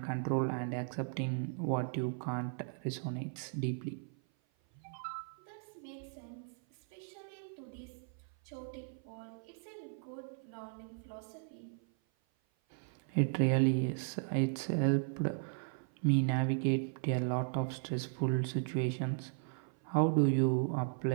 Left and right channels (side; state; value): left; silent; 53 dB below the other